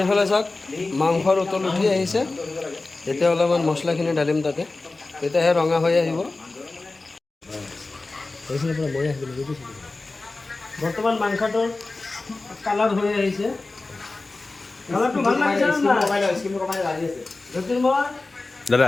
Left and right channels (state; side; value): quieter; right; 3.4 dB